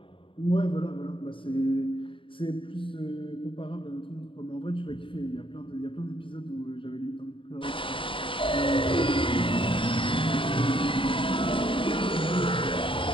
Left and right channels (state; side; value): late; right; 0.25 ms